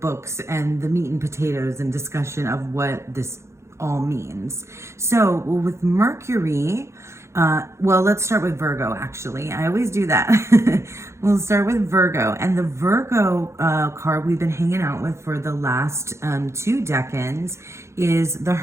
and the meat and potatoes and discussion of what this all means. So with Mercury, let's start with Virgo, actually. I always do that. We'll start with Virgo. And the Virgo card we've been hanging out with for the last 2 decans is the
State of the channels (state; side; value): late; left; 0.13 ms